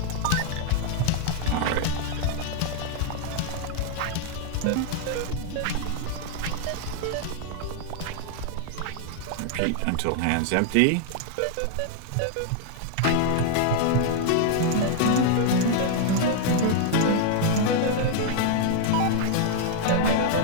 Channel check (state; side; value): different; both; correlation 0.00